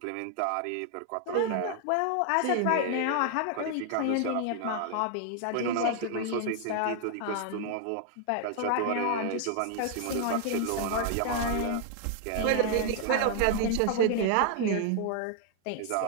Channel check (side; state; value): both; different; correlation 0.00